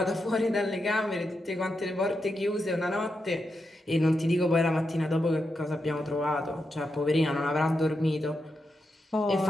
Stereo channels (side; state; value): both; normal; correlation 0.86